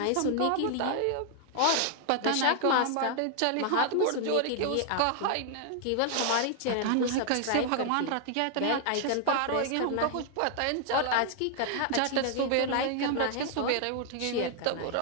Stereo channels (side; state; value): both; different; correlation 0.00